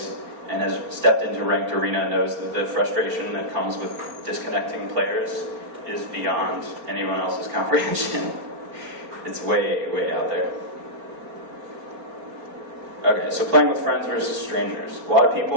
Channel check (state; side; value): late; left; 4.3 ms